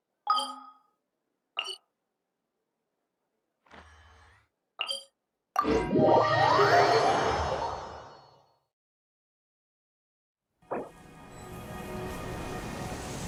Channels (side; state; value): both; identical; correlation 1.00